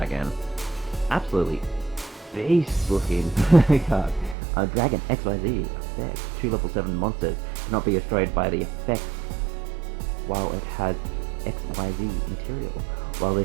Absolutely beast looking card. Dragon XYZ effect. 2 level 7 monsters cannot be destroyed by the effects while it has XYZ material. While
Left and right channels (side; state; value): left; drops out; at 4.4 s